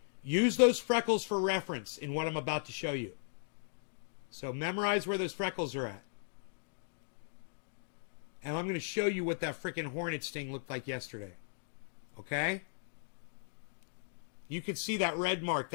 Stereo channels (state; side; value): silent; right; digital silence